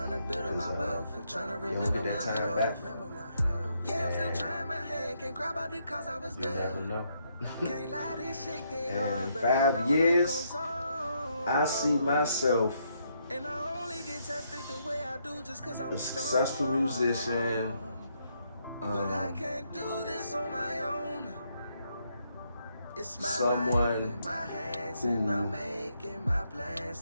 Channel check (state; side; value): inverted; both; correlation -0.75